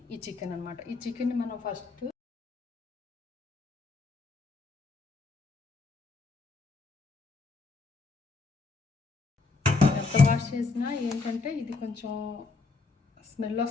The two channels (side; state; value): right; quieter; 4.1 dB